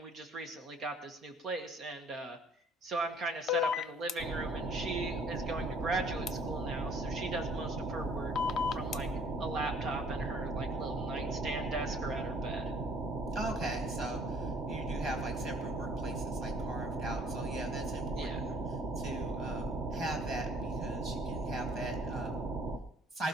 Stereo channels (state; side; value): normal; both; correlation 0.57